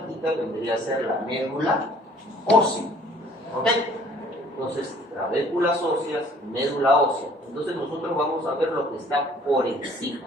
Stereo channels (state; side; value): normal; both; correlation 0.56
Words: vendría a ser la médula ósea. ¿Ok? Entonces, trabéculas óseas, médula ósea. Entonces nosotros vamos a ver lo que está por